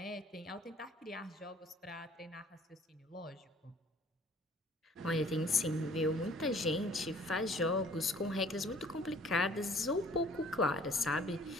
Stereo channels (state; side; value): normal; both; correlation 0.55